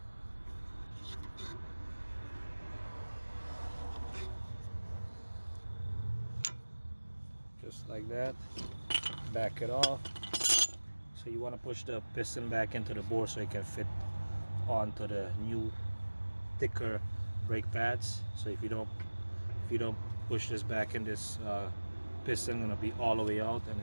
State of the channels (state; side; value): inverted; both; correlation -1.00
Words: Just like that. Back it off. So you want to push the piston back into the bore so it can fit onto the new thicker brake pads. So if you don't push this back in, this piston gonna be all the way out, and